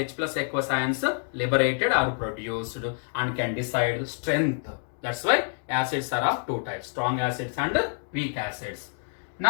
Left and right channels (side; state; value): right; silent; 60 dB below the other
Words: plus aqueous ions liberated or produced and can decide strength. That's why acids are of two types, strong acids and weak acids.